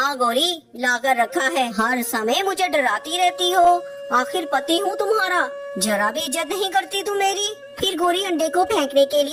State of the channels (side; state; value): both; identical; correlation 1.00